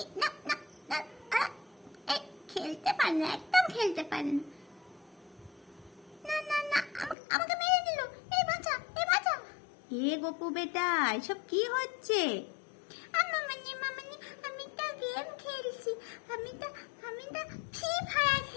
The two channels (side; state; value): right; drops out; at 7.2 s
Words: খেলতে পারে না, একদম খেলতে পারে না। না না না, আমাকে মেরে দিল। এই বাঁচা, এই বাঁচা। এ গোপু বেটা, এসব কি হচ্ছে? মামনি মামনি, আমি তো গেম খেলছি। আমি তো ফ্রি ফায়ার